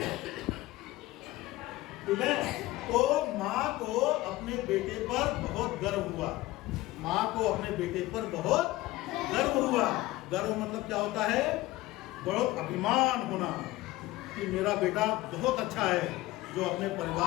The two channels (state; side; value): quieter; right; 18.0 dB